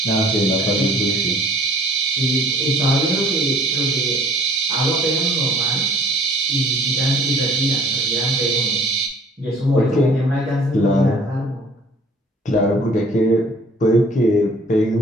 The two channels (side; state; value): both; normal; correlation 0.54